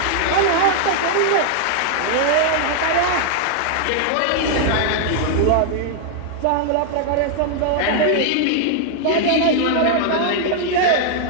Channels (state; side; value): different; both; correlation -0.01